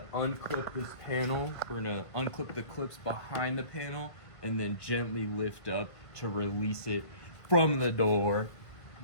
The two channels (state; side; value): late; right; 1.5 ms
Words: unclip this panel. We're gonna unclip the clips behind the panel and then gently lift up to release it from the door.